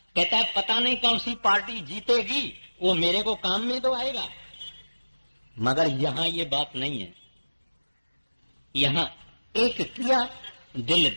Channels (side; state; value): both; inverted; correlation -1.00